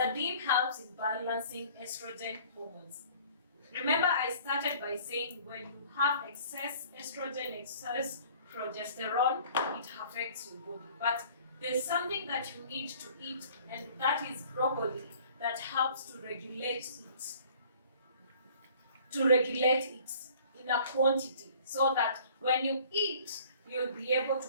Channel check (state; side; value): inverted; both; correlation -0.52